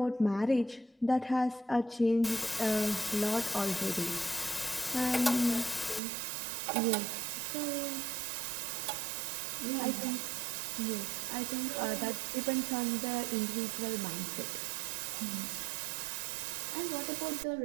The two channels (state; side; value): drops out; left; at 6.0 s